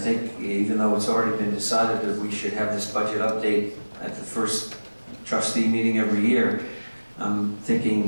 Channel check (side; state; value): both; inverted; correlation -1.00